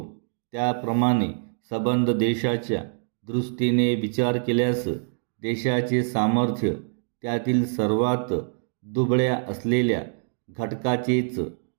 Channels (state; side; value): silent; left; digital silence